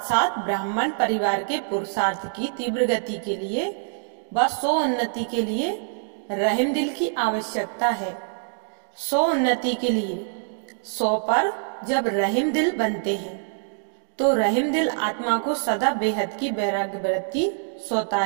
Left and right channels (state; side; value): silent; left; digital silence